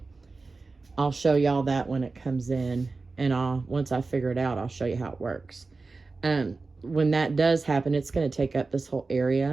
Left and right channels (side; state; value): left; quieter; 3.8 dB